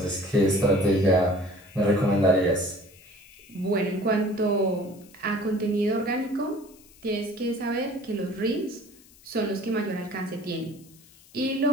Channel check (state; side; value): noise; left; hiss, 25 dB below the sound